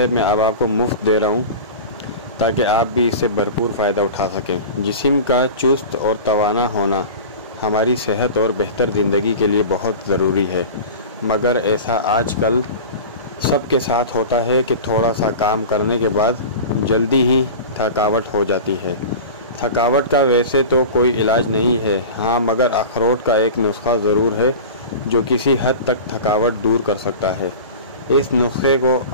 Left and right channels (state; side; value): inverted; both; correlation -0.33